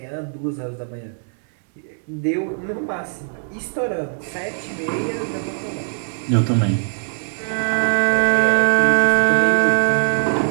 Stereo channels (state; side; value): silent; left; 65 dB below the other